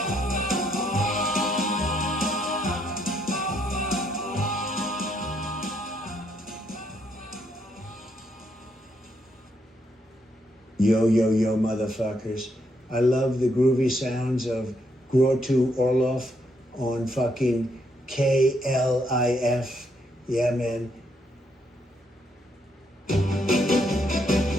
Yo, yo, yo, motherfuckers. I love the groovy sounds of Grottu Orloff on fucking KLIF. Yeah, man.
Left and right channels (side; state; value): both; normal; correlation 0.75